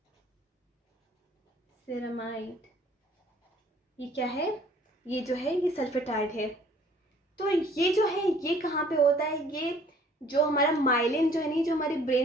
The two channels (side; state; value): both; normal; correlation 0.56